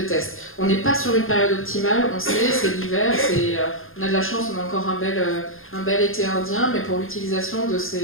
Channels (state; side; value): late; right; 0.60 ms